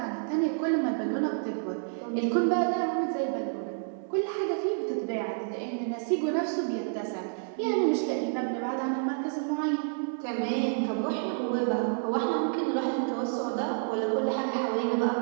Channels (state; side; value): silent; left; digital silence